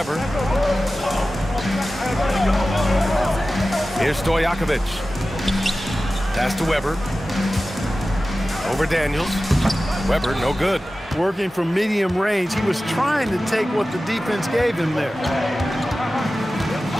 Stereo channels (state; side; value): normal; both; correlation 0.95